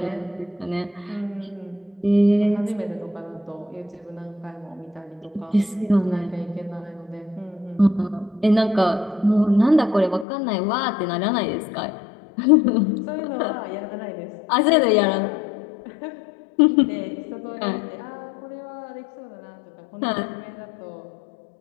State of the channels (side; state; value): right; drops out; at 10.2 s